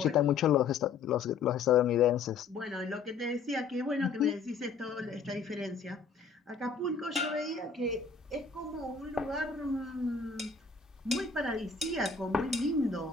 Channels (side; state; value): right; quieter; 5.3 dB